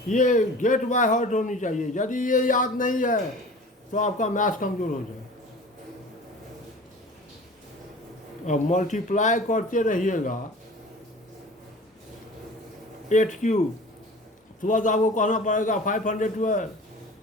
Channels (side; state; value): both; normal; correlation 0.41